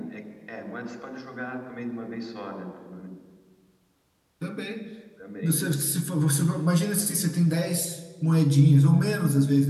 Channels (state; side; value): identical; both; correlation 1.00